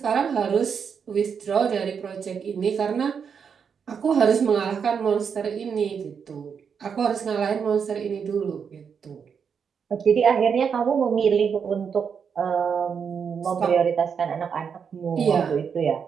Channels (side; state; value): left; quieter; 6.7 dB